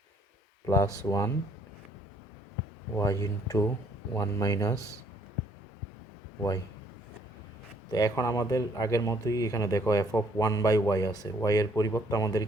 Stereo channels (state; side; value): normal; both; correlation 0.64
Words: plus 1 y into 1 minus y. তো এখন আমাদের আগের মতোই এখানে দেখো এফ অফ 1 বাই ওয়াই আছে, ওয়াই এর পরিবর্তে আমাদের